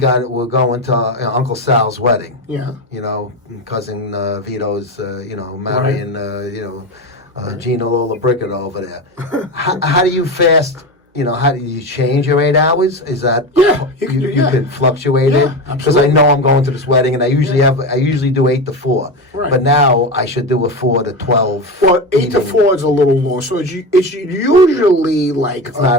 to Uncle Sal's wedding. Yeah. Cousin Vito's, marrying, Gina Lollobrigida over there. How do you fast? How do you change your 8 hours? Is that you can fluctuate it? Because I know I'm going to this wedding, and I usually do 8 to 4. Right. But now I should do a 4 to 12. Well, 8 to 4 is a little long, so it's usually like it's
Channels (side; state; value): both; normal; correlation 0.20